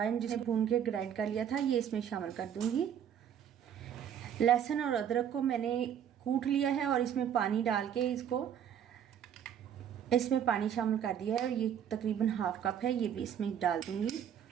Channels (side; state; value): left; quieter; 9.1 dB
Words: जिसे भून के ग्राइंड कर लिया था ये इसमें शामिल कर दूंगी। लहसुन और अदरक को मैंने कूट लिया है और इसमें पानी डाल के इसमें पानी शामिल कर दिया है और ये तकरीबन 1/2 कप है, ये भी इसमें डाल दूंगी।